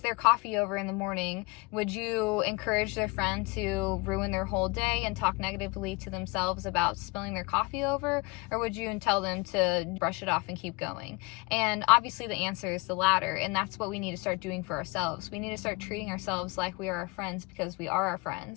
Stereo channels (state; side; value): quieter; right; 25.9 dB